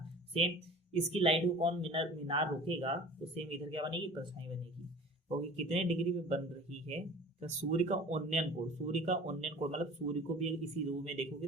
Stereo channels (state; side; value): normal; both; correlation 0.42